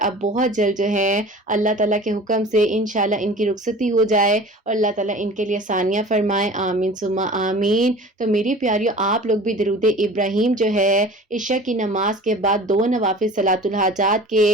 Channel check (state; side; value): normal; both; correlation 0.41